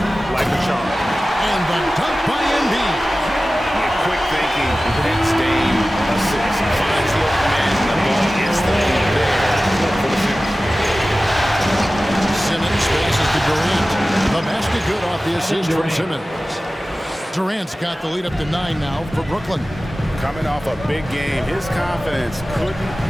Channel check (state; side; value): normal; both; correlation 0.96